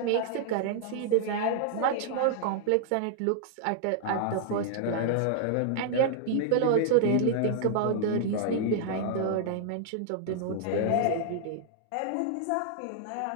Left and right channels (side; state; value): both; different; correlation -0.01